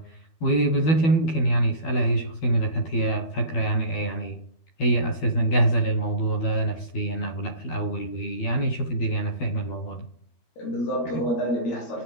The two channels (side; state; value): right; late; 12 ms